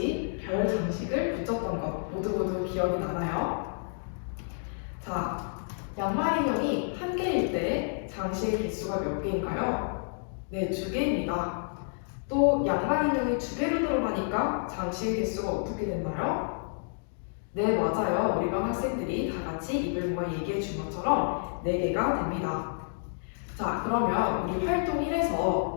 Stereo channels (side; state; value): right; silent; digital silence